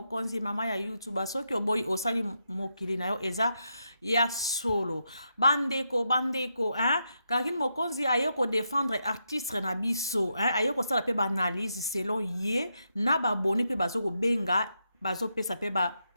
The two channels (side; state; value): both; inverted; correlation -0.83